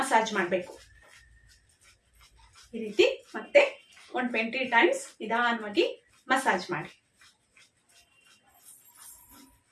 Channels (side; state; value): both; identical; correlation 1.00